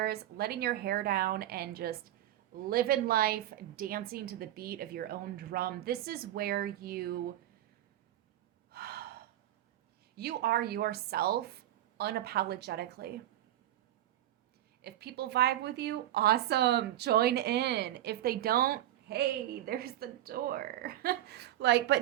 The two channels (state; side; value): quieter; left; 13.3 dB